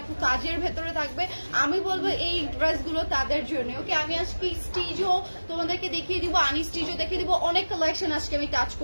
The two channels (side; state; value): both; inverted; correlation -1.00